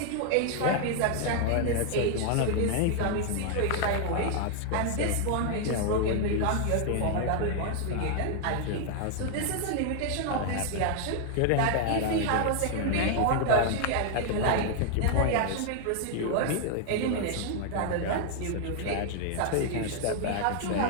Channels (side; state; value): both; different; correlation 0.00